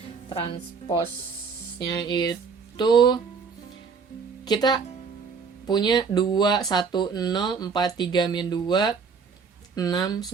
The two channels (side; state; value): left; quieter; 5.5 dB